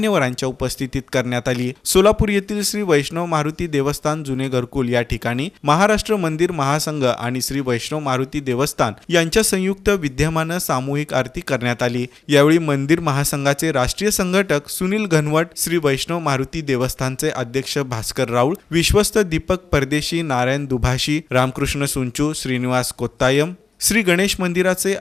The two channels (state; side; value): quieter; right; 4.8 dB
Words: उपस्थितीत करण्यात आली। सोलापूर येथील श्री वैष्णव मारुती देवस्थान जुने घरकुल या ठिकाणी महाराष्ट्र मंदिर महासंघ आणि श्री वैष्णव मारुती देवस्थान यांच्या संयुक्त विद्यमानं सामूहिक आरती करण्यात आली। यावेळी मंदिर महासंघाचे राष्ट्रीय संघटक सुनील घनवट, श्री वैष्णव मारुती देवस्थानचे अध्यक्ष भास्कर राऊळ, विश्वस्त दीपक परदेशी, नारायण दुभाषी, रामकृष्ण सुंचू, श्रीनिवास कोत्तायम, श्री गणेश मंदिराचे